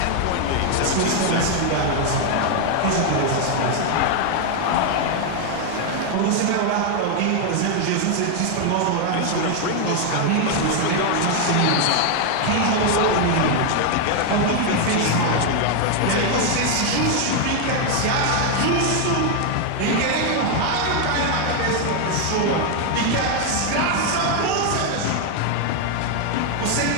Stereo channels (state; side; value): different; both; correlation 0.01